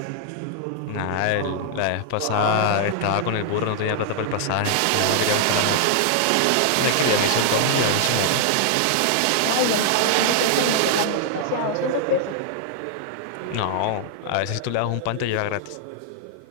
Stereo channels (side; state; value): both; different; correlation 0.00